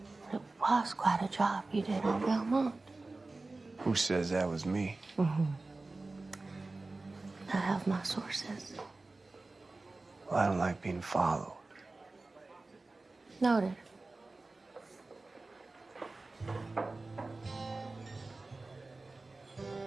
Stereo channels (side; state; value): left; quieter; 3.3 dB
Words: It was quite a job you did on Belmont. Who says that was me? I have my sources. Well, I don't like being followed. Noted.